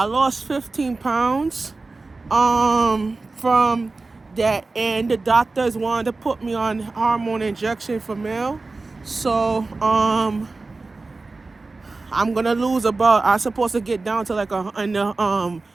15 pounds from that, and the doctors wanted to put me on hormone injection for male. So I'm gonna I'm supposed to get down to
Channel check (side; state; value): left; quieter; 3.6 dB